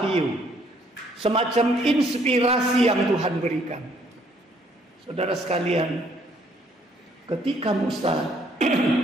semacam inspirasi yang Tuhan berikan. Saudara sekalian, ketika Musa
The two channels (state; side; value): normal; both; correlation 0.65